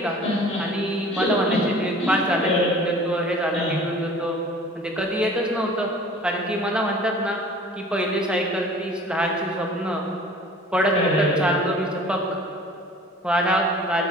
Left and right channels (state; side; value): normal; both; correlation 0.46